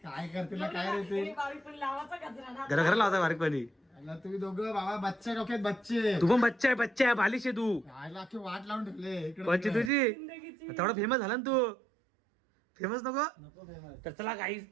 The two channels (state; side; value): drops out; left; at 9.9 s